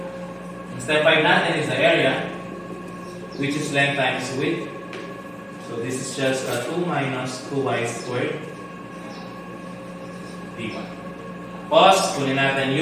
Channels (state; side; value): identical; both; correlation 1.00